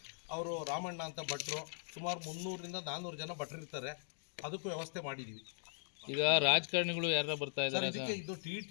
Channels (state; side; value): silent; right; digital silence